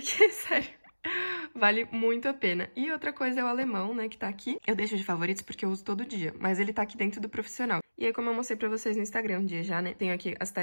sério, vale muito a pena. E outra coisa é o alemão, né, que tá aqui. Eu deixo de favoritos porque eu uso todo dia, mas ele tá aqui dentro do profissional. E aí, como eu mostrei pra vocês no Instagram um dia já, né, tenho aqui as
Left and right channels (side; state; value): both; inverted; correlation -1.00